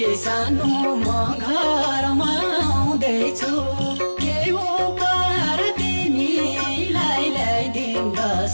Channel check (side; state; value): both; inverted; correlation -1.00